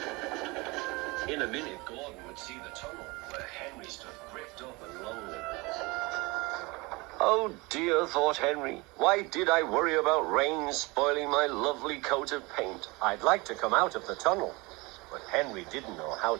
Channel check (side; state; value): left; quieter; 24.9 dB